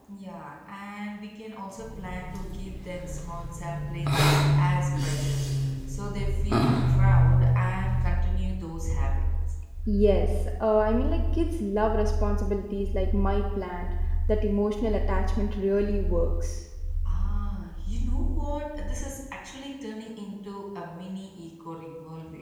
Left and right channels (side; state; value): both; identical; correlation 1.00